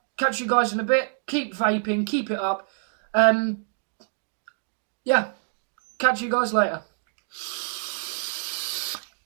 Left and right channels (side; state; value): left; silent; digital silence